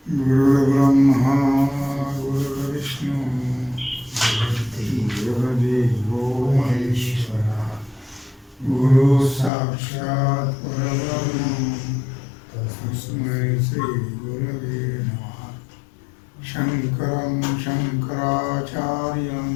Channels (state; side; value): drops out; right; at 9.5 s